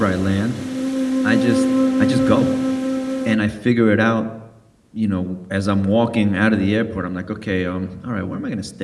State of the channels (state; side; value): identical; both; correlation 1.00